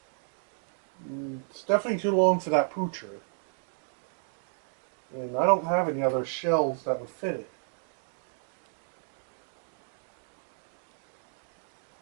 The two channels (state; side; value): silent; left; digital silence